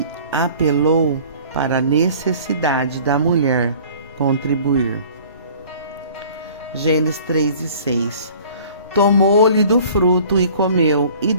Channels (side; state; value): both; inverted; correlation -0.49